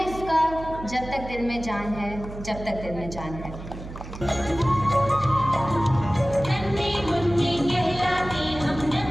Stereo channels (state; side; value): noise; right; hum, 12 dB below the sound